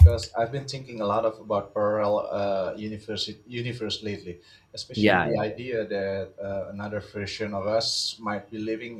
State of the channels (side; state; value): both; identical; correlation 1.00